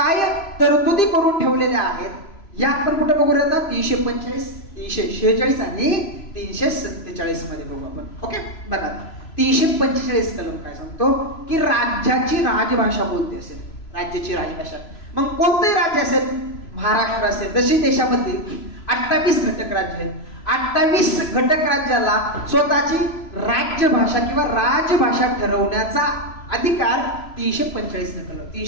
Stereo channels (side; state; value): right; late; 3.0 ms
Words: तरतुदी करून ठेवलेल्या आहेत या आपण कुठे बघू आता 345, 346 आणि 347 मध्ये बघू आपण. ओके. बघा 345 कलम काय सांगतो की राज्याची राजभाषा कोणती असेल, राज्याची राजभाषा. मग कोणते राज्य असेल, महाराष्ट्र असेल. जशी देशामध्ये 28 घटक राज्य आहेत. 28 घटक राज्याला स्वतःची राज्यभाषा किंवा राजभाषा ठरवण्याचा अधिकार 345